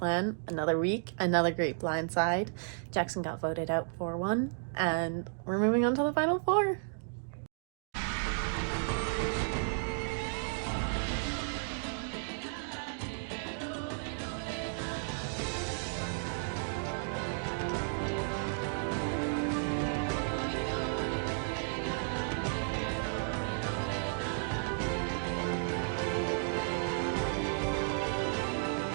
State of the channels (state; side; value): silent; left; digital silence